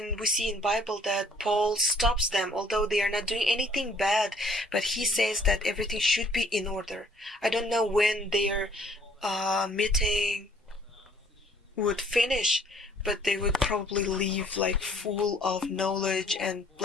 we see in Bible that Paul stops them, although they are not doing anything bad, but he says that everything should be in order. I don't know when their meeting would finish, but they would probably leave like full of knowledge and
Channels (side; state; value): both; normal; correlation 0.60